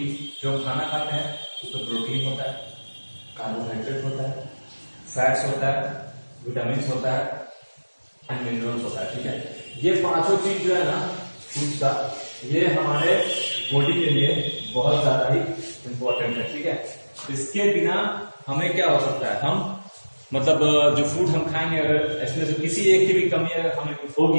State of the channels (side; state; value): both; inverted; correlation -1.00